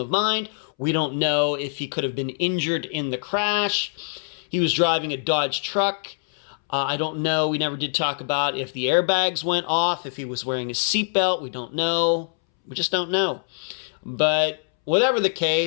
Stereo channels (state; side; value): silent; right; 63 dB below the other